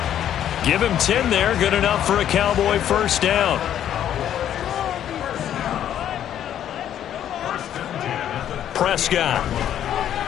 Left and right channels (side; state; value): right; quieter; 10.5 dB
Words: Give him 10 there, good enough for a Cowboy first down. Prescott.